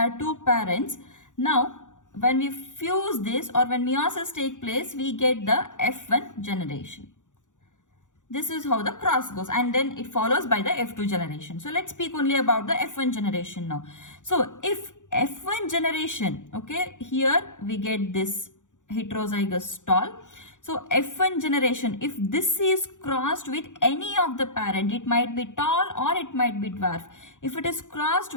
two parents. Now, when we fuse this or when meiosis take place, we get the F1 generation. This is how the cross goes, and then it follows by the F2 generation. So let's speak only about the F1 generation now. So if F1 generation, okay, here we get this heterozygous tall. So F1 generation, if this is crossed with any of the parent, it might be tall or it might be dwarf. If it is crossed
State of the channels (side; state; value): right; late; 0.86 ms